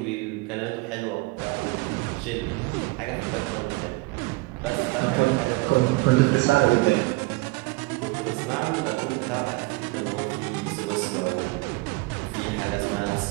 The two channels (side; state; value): left; quieter; 23.5 dB